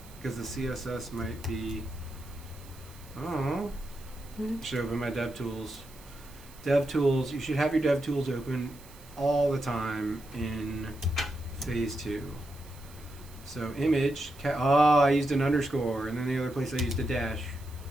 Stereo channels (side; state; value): right; noise; hiss, 22 dB below the sound